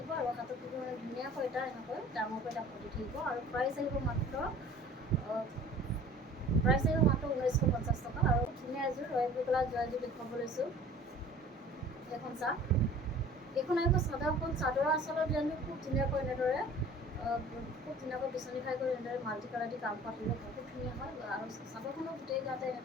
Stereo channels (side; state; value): both; normal; correlation 0.47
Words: আৰু হাতত থাকিব মানে ধুনীয়াকৈ এটা এনেকৈ ডাঙৰকৈ এটা পতি থাকিব আৰু প্ৰাইচ আহিব মাত্ৰ 1950 টকা। আৰু ধুনীয়া এযোৰ ৰয়েল ব্লু কালাৰ যোৰা এযোৰ দেখুৱাব লৈছোঁ। এইখন চাওক, এইখন আহিব চাদৰখন। চাদৰৰ আচলৰ ডিজাইনটো খুব ধুনীয়াকৈ এনেদৰে খুব ধুনীয়াকৈ বিচনী খাই কৰি এনেদৰে মাল্টি কালাৰ দি কাম কৰা থাকিব, বহুত ধুনীয়া হয়। আৰু চাদৰখনৰ গোটেই গাতে